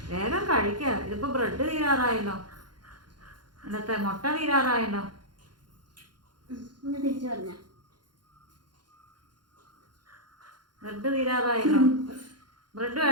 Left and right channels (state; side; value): late; left; 0.71 ms